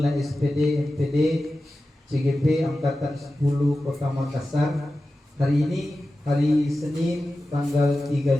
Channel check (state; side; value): normal; both; correlation 0.94